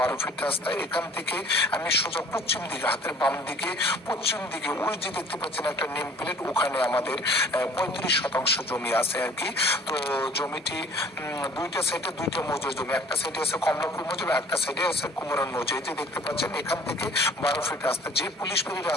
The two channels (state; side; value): normal; both; correlation 0.51